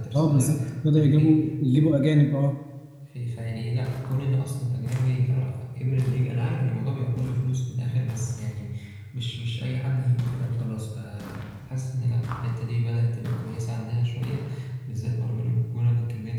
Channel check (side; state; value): both; identical; correlation 1.00